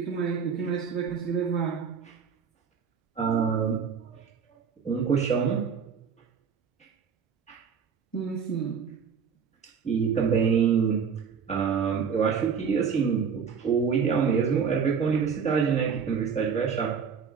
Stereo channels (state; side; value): quieter; left; 6.5 dB